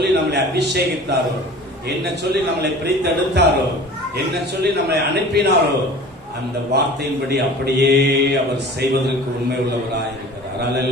நம்மளை அபிஷேகித்தாரோ, என்ன சொல்லி நம்மளை பிரித்தெடுத்தாரோ, என்ன சொல்லி நம்மளை அனுப்பினாரோ, அந்த வார்த்தையின்படி அப்படியே அவர் செய்வதற்கு உண்மை உள்ளவராயிருக்கிறார்.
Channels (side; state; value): both; normal; correlation 0.42